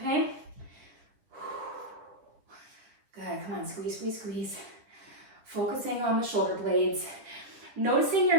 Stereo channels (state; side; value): late; left; 10 ms